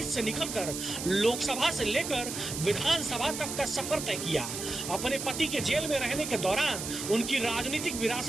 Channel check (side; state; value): right; noise; hiss, 6 dB below the sound